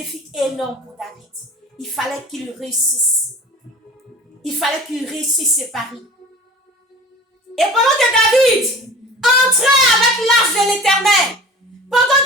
énorme pour David. Il fallait qu'il réussisse. Il fallait qu'il réussisse ses paris. Et pendant que David entrait avec l'arche de l'Éternel, pendant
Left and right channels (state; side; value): normal; both; correlation 0.41